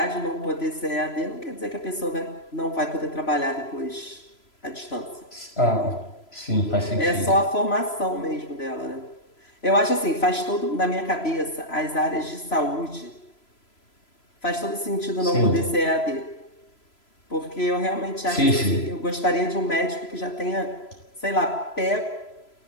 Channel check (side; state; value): right; late; 3.0 ms